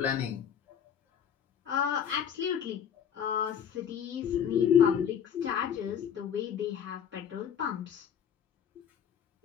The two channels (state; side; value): quieter; right; 8.3 dB